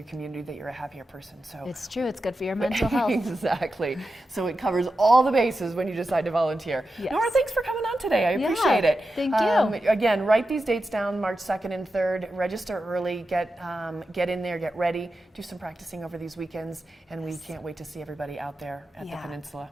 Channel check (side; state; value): both; normal; correlation 0.90